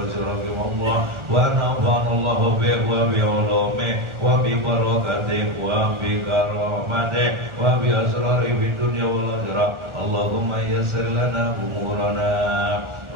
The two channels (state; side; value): late; left; 1.4 ms